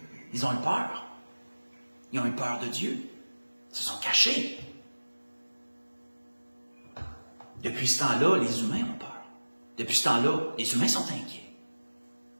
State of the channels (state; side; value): inverted; both; correlation -1.00